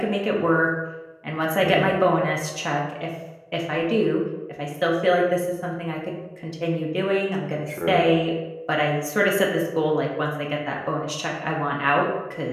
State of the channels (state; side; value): identical; both; correlation 1.00